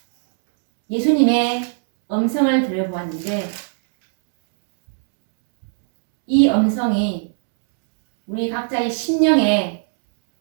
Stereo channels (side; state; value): left; silent; 67 dB below the other